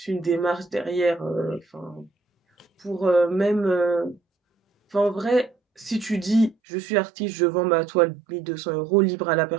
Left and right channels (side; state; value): left; drops out; at 6.6 s